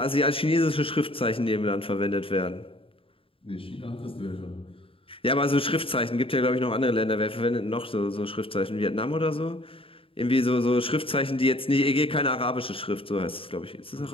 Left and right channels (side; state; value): right; late; 0.26 ms